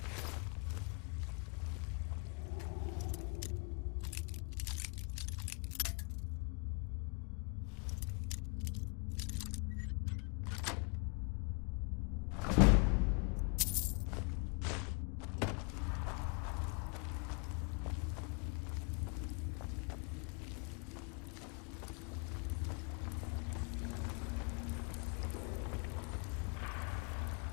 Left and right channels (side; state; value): right; quieter; 34.4 dB